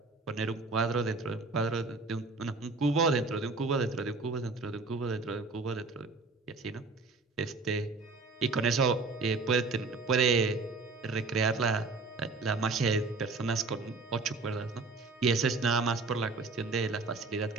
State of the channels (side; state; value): left; quieter; 3.8 dB